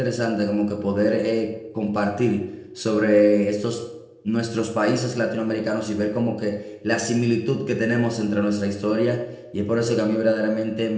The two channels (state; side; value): identical; both; correlation 1.00